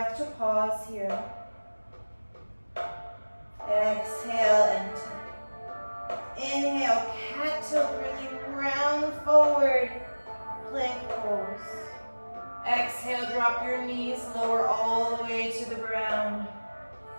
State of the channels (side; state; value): both; inverted; correlation -1.00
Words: to pause here. Exhale, enter. Inhale, cat tilt, really round forward, plank pose. Exhale, drop your knees, lower all the way to the ground.